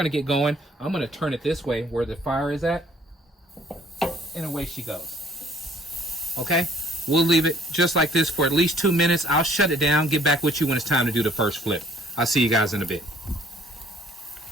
get going. I'm gonna turn it this way where the fire is at, and away she goes. Okay, we'll leave it just like this for at least 2 minutes. I'll shut it down, get back with you when it's time to do the first flip. I'll see you guys in a bit.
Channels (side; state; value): both; normal; correlation 0.59